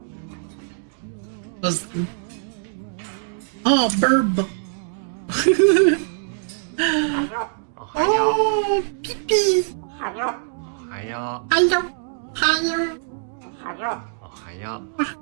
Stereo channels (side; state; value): left; silent; digital silence